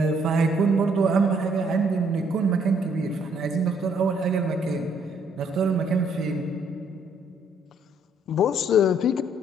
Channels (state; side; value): normal; both; correlation 0.67